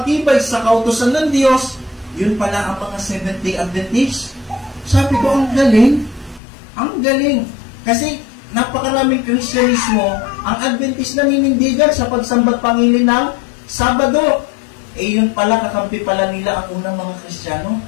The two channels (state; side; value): drops out; right; at 6.4 s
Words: sa kautusan ng Diyos, yun pala ang mga Seventh-day Adventist. Sabi ko, ang galing. Ang galing. Kasi napakaraming Kristyanismo, ang Adventist naninindigan sa pagsambat pangilin ng Sabado. Yun pala, kakampi pala nila ang unang mga Kristiyano.